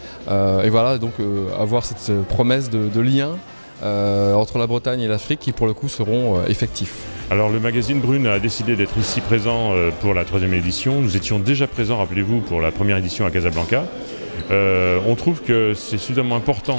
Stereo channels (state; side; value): inverted; both; correlation -1.00